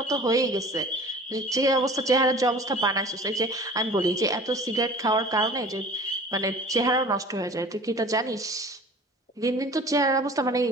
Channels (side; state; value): both; normal; correlation 0.44